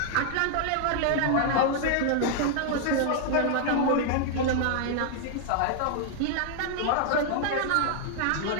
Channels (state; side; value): different; both; correlation 0.00